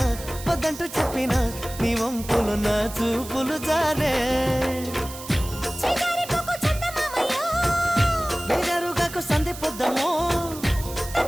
వద్దంటూ చెప్పినా నీ వంపులు నా చూపులు జారే బేజారుగాకు సంధి పొద్దమో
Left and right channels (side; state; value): right; noise; hiss, 13 dB below the sound